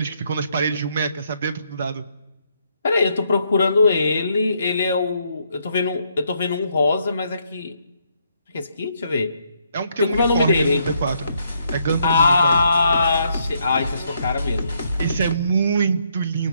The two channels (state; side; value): inverted; both; correlation -0.74